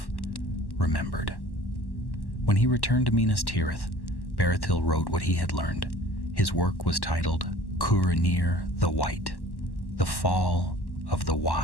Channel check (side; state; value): right; late; 1.1 ms